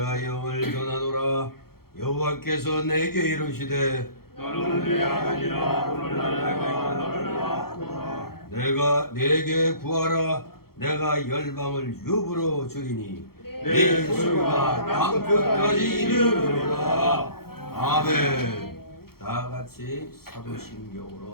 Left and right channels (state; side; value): late; right; 0.94 ms